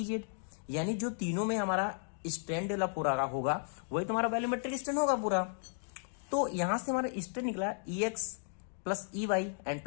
Z, यानी जो तीनों में हमारा स्ट्रेन डेवलप हो रहा होगा वही तुम्हारा वैल्यूमेट्रिक स्ट्रेन होगा पूरा। तो यहां से हमारा स्ट्रेन निकला E X plus E Y and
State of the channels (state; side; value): silent; right; digital silence